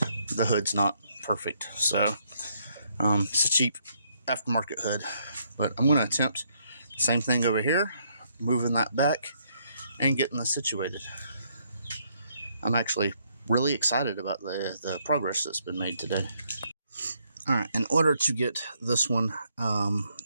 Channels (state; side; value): inverted; both; correlation -0.72